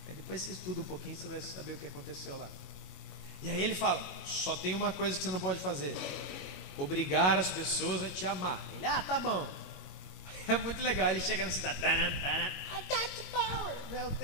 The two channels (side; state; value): right; late; 21 ms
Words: Aí depois você estuda um pouquinho, você vai saber o que aconteceu lá. E aí ele fala, só tem uma coisa que você não pode fazer: obrigar as pessoas a te amar. Ele, tá bom. É muito legal, ele chega na cidade, I got the power, eu